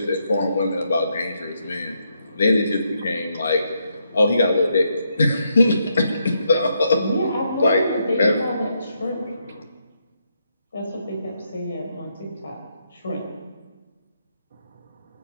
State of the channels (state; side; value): inverted; both; correlation -0.78